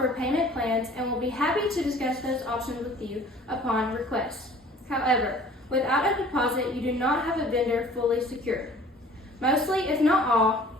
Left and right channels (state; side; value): normal; both; correlation 0.49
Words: payment plans and will be happy to discuss those options with you upon request. However, without a deposit, you do not have a vendor fully secured. Mostly, if not all,